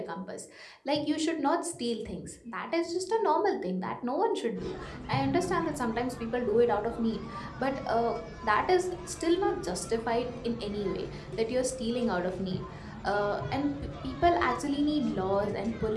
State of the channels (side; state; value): both; identical; correlation 1.00